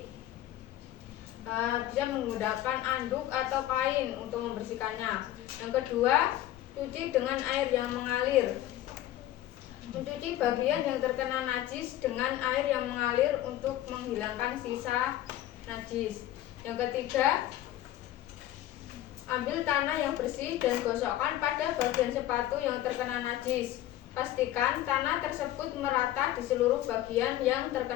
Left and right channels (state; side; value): quieter; right; 13.7 dB